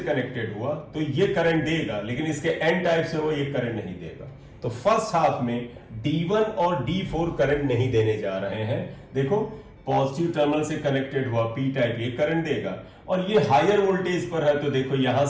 हुआ तो ये करंट देगा, लेकिन इसके एन टाइप से वो ये करंट नहीं देगा। तो फर्स्ट हाफ में D1 और D4 करंट नहीं देने जा रहे हैं। देखो पॉजिटिव टर्मिनल से कनेक्टेड हुआ पी टाइप, ये करंट देगा, और ये हायर वोल्टेज पर है, तो देखो यहां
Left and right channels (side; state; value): both; identical; correlation 1.00